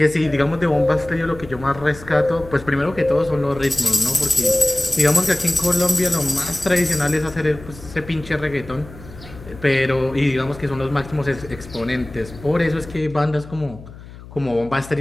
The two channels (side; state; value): left; noise; hum, 17 dB below the sound